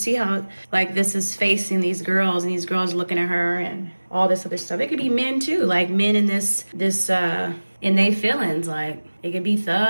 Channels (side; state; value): both; inverted; correlation -1.00